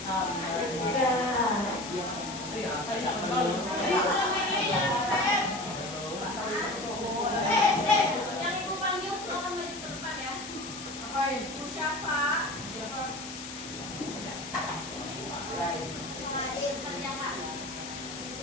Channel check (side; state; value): left; noise; hiss, 11 dB below the sound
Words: Yang ibu panggil silakan maju ke depan ya. Apain? Bu Syafa. Siapa? Saladin, kerjakan.